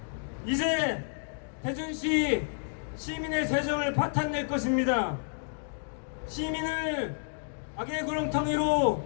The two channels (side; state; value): right; silent; digital silence